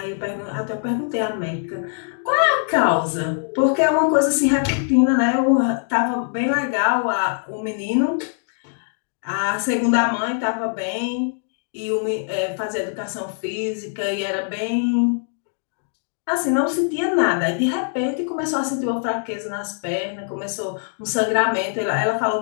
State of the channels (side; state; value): right; silent; digital silence